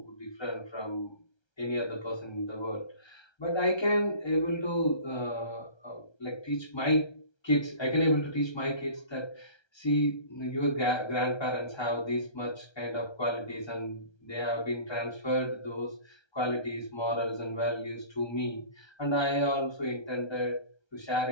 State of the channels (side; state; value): right; late; 1.3 ms